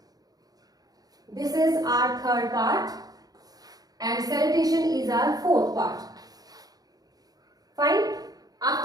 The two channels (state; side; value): late; left; 0.18 ms